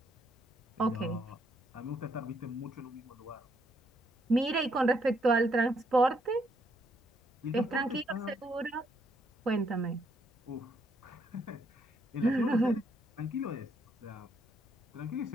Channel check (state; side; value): normal; both; correlation 0.73